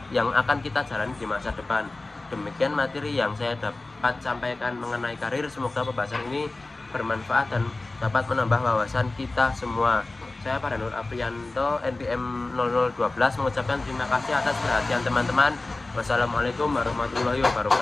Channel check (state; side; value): quieter; right; 3.2 dB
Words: yang akan kita jalani di masa depan. Demikian materi yang saya dapat sampaikan mengenai karir. Semoga pembahasan ini bermanfaat dan dapat menambah wawasan kita semua. Saya Pak Nur Aprianto, NPM 0012, mengucapkan terima kasih atas perhatian teman-teman. Wassalamualaikum warahmatullahi